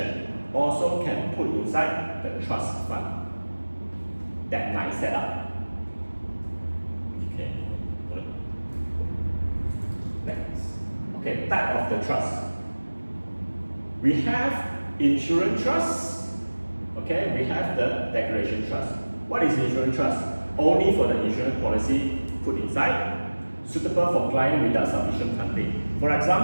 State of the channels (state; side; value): inverted; both; correlation -1.00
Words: Also can put inside the trust fund that might set up. Okay. Next. Okay, type of the trust. We have insurance trust. Okay, we have the declaration trust. What is insurance trust? Only for the insurance policy put inside, suitable for client without sufficient funding. For